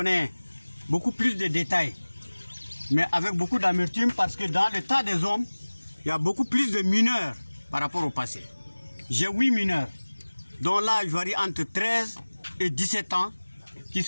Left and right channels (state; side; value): inverted; both; correlation -1.00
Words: beaucoup plus de détails, mais avec beaucoup d'amertume, parce que dans le tas des hommes, il y a beaucoup plus de mineurs par rapport au passé. J'ai 8 mineurs, dont l'âge varie entre 13 et 17 ans, qui